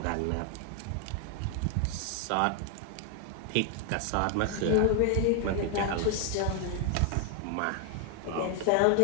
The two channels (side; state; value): both; different; correlation 0.00